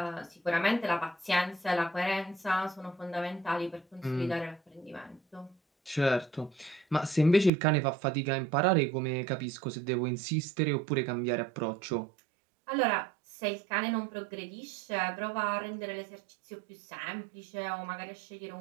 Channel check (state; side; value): drops out; left; at 7.5 s